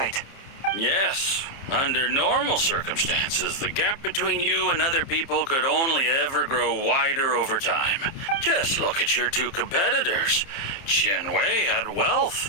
Yes. Under normal circumstances, the gap between you and other people could only ever grow wider over time. Just look at your two competitors. Qianwei had wealth.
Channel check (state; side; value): late; right; 30 ms